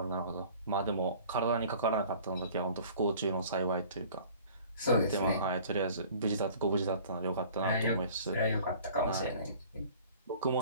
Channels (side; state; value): both; inverted; correlation -0.48